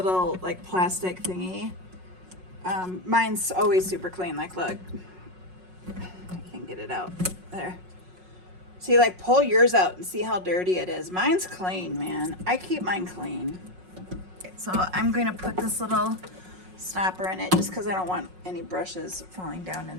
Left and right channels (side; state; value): left; late; 5.5 ms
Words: like plastic thingy. Mine's always super clean. Like, look, I can't get it out. There. See, like, pull yours out and see how dirty it is. Mine's clean, man. I keep mine clean. Okay, so I'm going to put this little stopper in it just because I don't want any brushes falling down